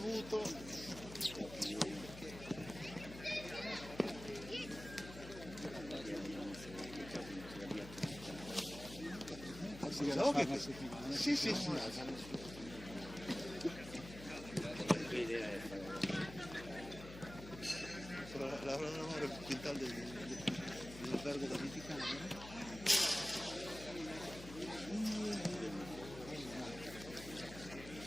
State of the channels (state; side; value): noise; left; hum, 13 dB below the sound